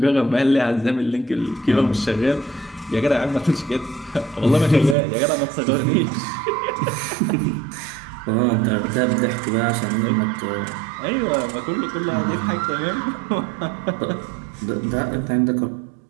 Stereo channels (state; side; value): drops out; left; at 5.0 s